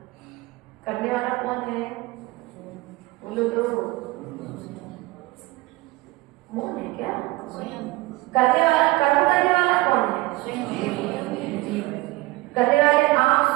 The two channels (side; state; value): left; quieter; 20.8 dB